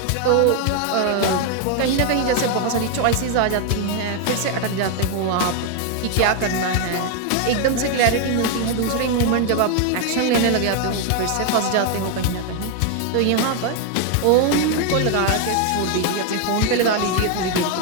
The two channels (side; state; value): both; different; correlation 0.01